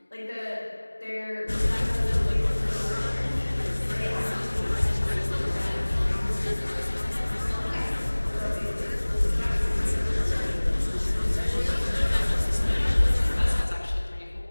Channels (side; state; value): both; inverted; correlation -1.00